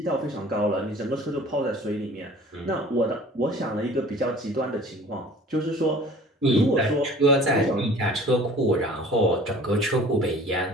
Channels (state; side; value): normal; both; correlation 0.47